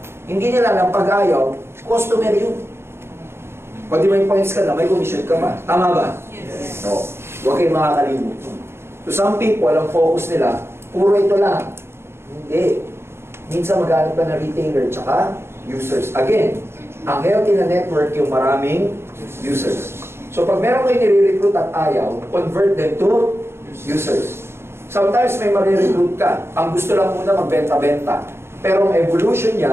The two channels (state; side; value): late; left; 0.12 ms